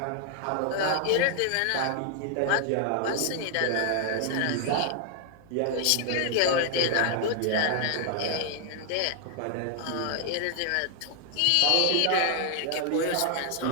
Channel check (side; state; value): both; different; correlation 0.00